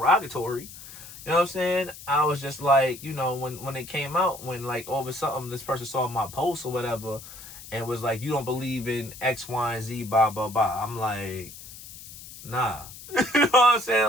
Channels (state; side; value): noise; left; hiss, 15 dB below the sound